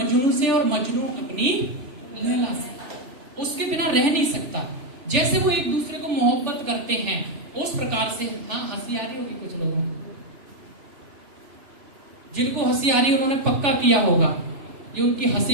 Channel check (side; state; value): left; late; 3.4 ms